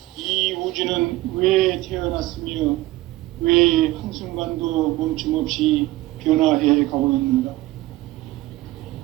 이 우주는 왜 태어났으며 왜 한순간도 멈춤없이 변화해 가고 있는가?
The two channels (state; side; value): quieter; left; 18.2 dB